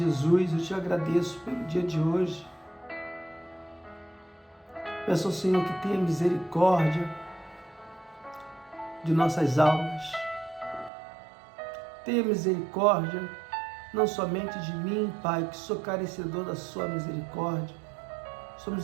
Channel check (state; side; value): drops out; left; at 10.9 s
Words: eu te agradeço pelo dia de hoje. Peço ao Senhor que tenha misericórdia de nossas almas. Tenha misericórdia não somente de mim, Pai, que sou carecedor da sua misericórdia. Sua